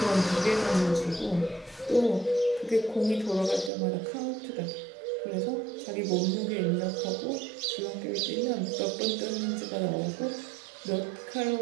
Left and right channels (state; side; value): drops out; left; at 3.7 s